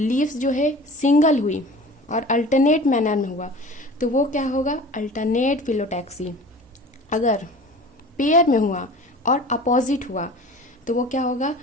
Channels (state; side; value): normal; both; correlation 0.40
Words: जो है सिंगल हुई और अल्टरनेट मैनर में हुआ तो वो क्या होगा? Alternate phyllotaxy. अगर पेयर में हुआ और अपोजिट हुआ तो वो क्या होगा?